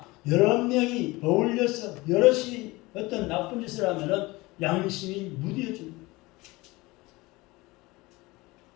여러 명이 어울려서 여럿이 어떤 나쁜 짓을 하면은 양심이 무뎌집니다.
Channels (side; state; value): right; quieter; 21.8 dB